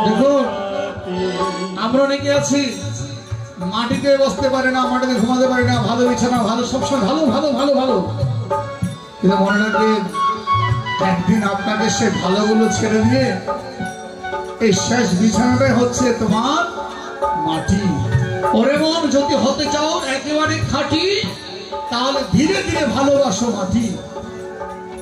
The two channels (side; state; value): both; identical; correlation 1.00